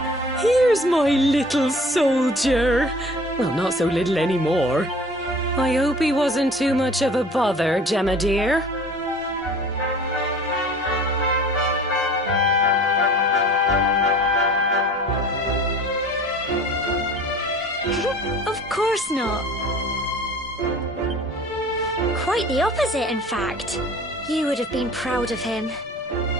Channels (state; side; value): normal; both; correlation 0.46